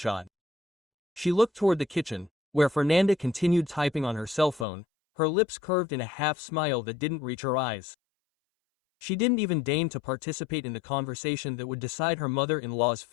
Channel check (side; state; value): right; drops out; at 4.7 s